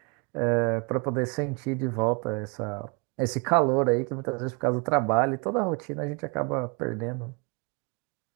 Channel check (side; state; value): left; quieter; 31.7 dB